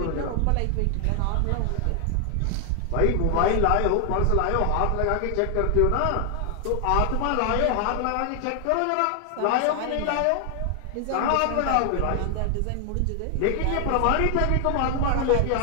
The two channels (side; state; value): both; different; correlation 0.00